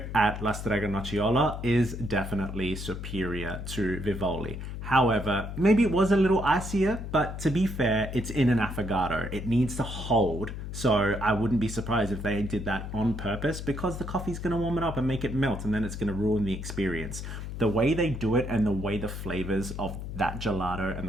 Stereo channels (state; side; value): noise; left; hum, 7 dB below the sound